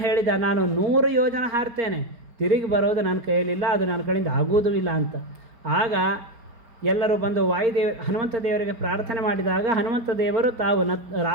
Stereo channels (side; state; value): left; late; 4.4 ms